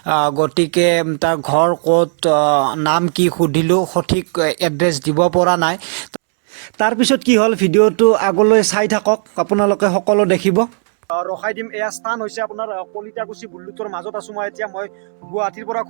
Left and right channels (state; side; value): silent; left; 69 dB below the other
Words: গতিকে তাৰ ঘৰ ক'ত, নাম কি সুধিলোঁ, সঠিক এড্ৰেছ দিব পৰা নাই। তাৰপিছত কি হ'ল, ভিডিঅ'টো আগলৈ চাই থাকক, আপোনালোকে সকলো দেখিব। ৰখাই দিম। এয়া স্থান হৈছে আপোনাৰ কলিতাকুছি বুল্লুথৰ মাজত আছোঁ মই এতিয়া। মই গুৱাহাটীৰ পৰা